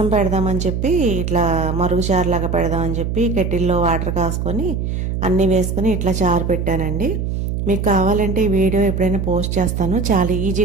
పెడదామని చెప్పి ఇట్లా మరుగు చారులాగా పెడదామని చెప్పి కెటిల్లో వాటర్ కాసుకొని అన్నీ వేసుకొని ఇట్లా చారు పెట్టానండి. మీకు కావాలంటే ఈ వీడియో ఎప్పుడైనా పోస్ట్ చేస్తాను. చాలా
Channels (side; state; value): right; noise; hum, 2 dB below the sound